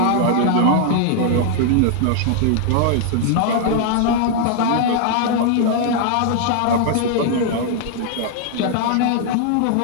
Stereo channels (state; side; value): different; both; correlation 0.00